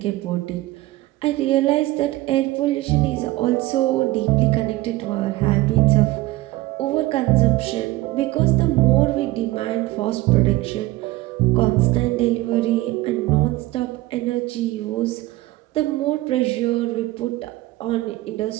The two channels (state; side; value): quieter; left; 18.4 dB